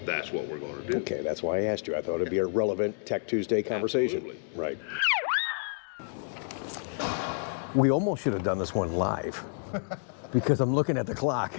that's what we're going to do. Okay, that's why I asked you. I thought it'd be a relevant Tech Tuesday conversation. Absolutely. Right. We almost should have done this one live because I'm looking at the clock.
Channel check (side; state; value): right; silent; digital silence